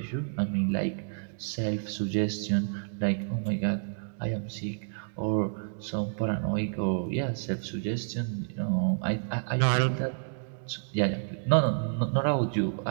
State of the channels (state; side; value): silent; left; digital silence